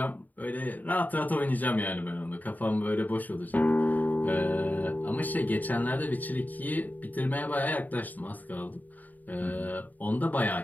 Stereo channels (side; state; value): right; late; 0.083 ms